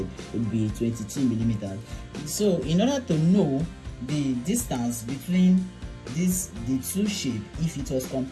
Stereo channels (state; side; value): identical; both; correlation 1.00